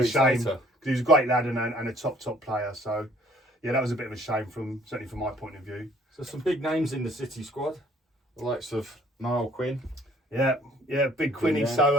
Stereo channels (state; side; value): normal; both; correlation 0.59